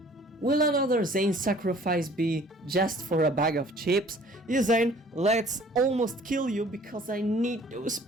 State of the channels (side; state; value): both; normal; correlation 0.53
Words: will another Zane sacrifice be just for a bag of chips? Yeah, Zane, let's almost kill you because I need those